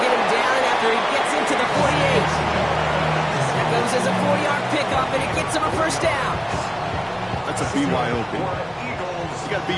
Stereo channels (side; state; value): both; identical; correlation 1.00